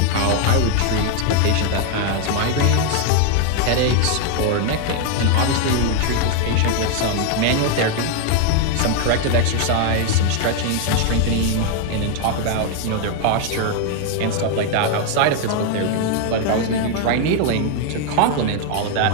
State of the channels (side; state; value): both; different; correlation 0.01